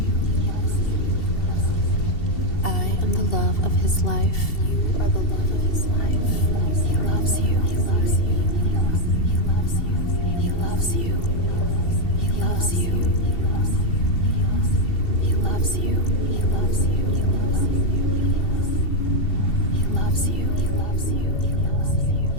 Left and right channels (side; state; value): right; late; 2.7 ms